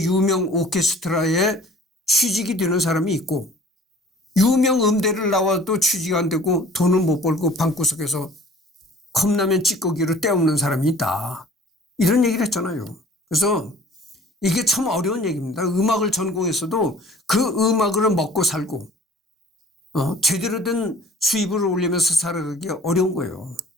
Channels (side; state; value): both; normal; correlation 0.50